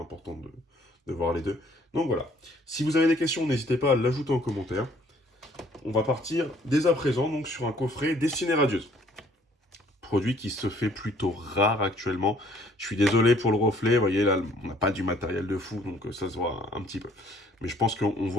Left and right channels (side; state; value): both; normal; correlation 0.60